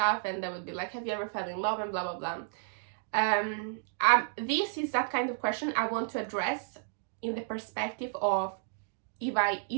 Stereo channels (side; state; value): left; silent; digital silence